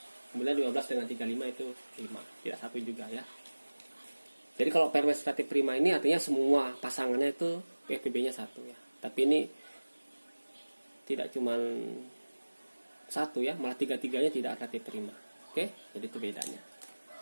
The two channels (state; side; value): inverted; both; correlation -1.00